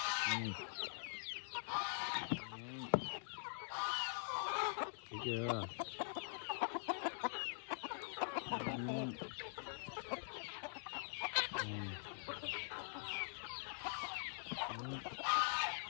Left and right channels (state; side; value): silent; right; digital silence